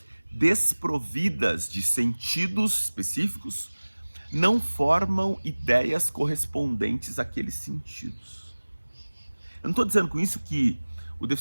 desprovidas de sentidos específicos não formam ideias correspondentes àqueles sentidos. Eu não estou dizendo com isso que o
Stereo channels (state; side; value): inverted; both; correlation -1.00